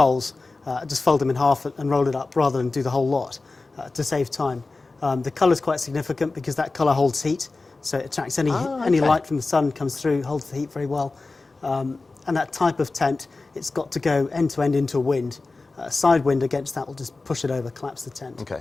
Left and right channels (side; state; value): right; quieter; 3.6 dB